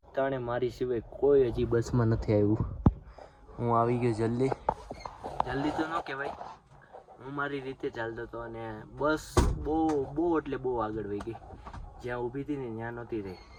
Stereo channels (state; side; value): identical; both; correlation 1.00